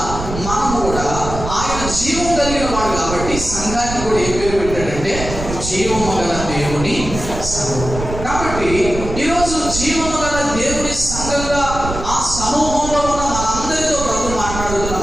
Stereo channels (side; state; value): right; noise; rumble, 7 dB below the sound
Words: మనం కూడా ఆయన జీవం కలిగిన వాడు కాబట్టి సంఘానికి కూడా ఏ పేరు పెట్టాడంటే జీవము గల దేవుని సంఘం. కాబట్టి ఈరోజు జీవము గల దేవుని సంఘంగా ఆ సమూహంలో ఉన్న మనందరితో ప్రభు మాట్లాడుతున్న